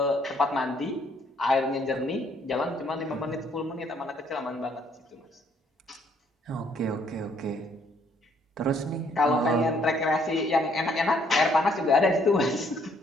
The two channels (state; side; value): normal; both; correlation 0.66